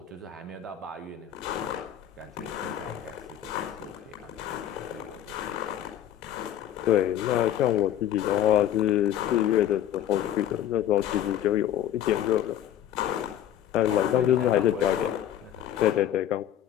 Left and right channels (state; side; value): quieter; right; 11.1 dB